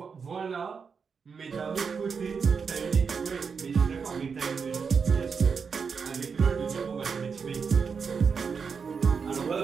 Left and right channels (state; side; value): quieter; left; 5.8 dB